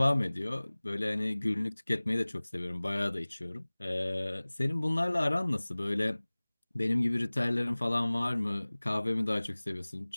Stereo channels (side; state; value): both; inverted; correlation -1.00